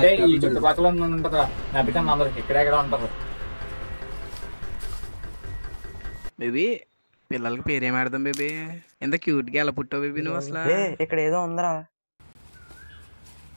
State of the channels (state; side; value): inverted; both; correlation -1.00